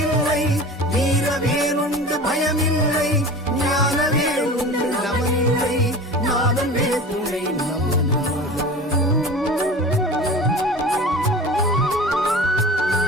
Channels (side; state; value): both; normal; correlation 0.36